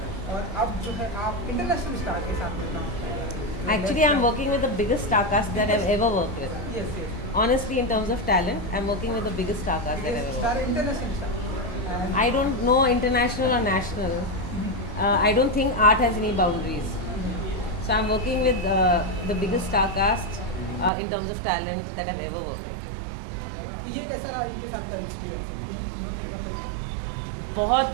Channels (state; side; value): drops out; left; at 20.9 s